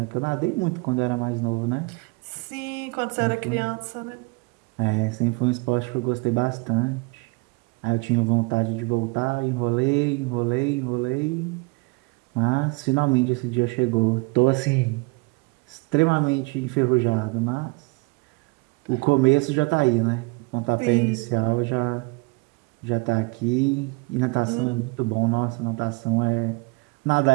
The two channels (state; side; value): quieter; left; 27.6 dB